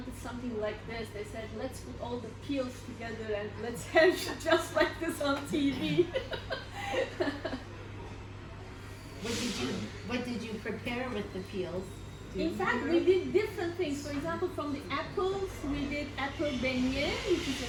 something like this. They said, let's put all the peels together and let's have just like this on TV. What did you prepare with the peels? In fact, we did different things. For example, from the apples, we did apple beignet, which is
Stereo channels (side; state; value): both; identical; correlation 1.00